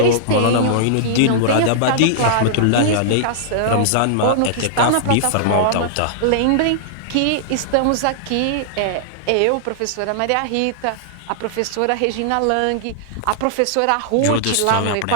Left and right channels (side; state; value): both; different; correlation -0.01